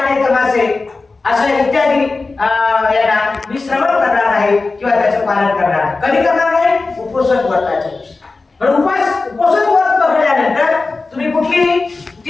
तमाशे अशा इत्यादी यांना मी श्रवण करणार आहे किंवा त्याचं पालन करणार आहे. कधी करणार आहे? उपोषण व्रताच्या दिवशी. पण उपोषण व्रत पकडल्यानंतर तुम्ही कुठली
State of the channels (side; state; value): right; quieter; 3.8 dB